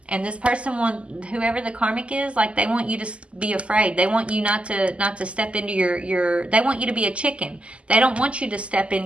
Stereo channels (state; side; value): late; left; 0.057 ms